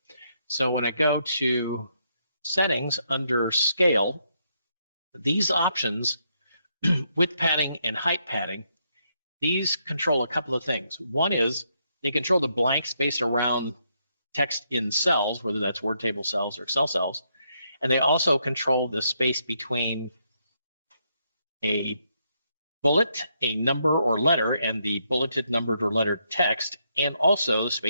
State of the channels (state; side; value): inverted; both; correlation -0.77